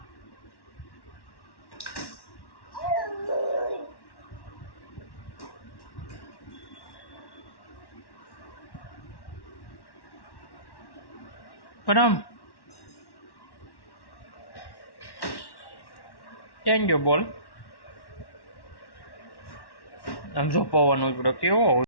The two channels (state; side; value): late; right; 1.1 ms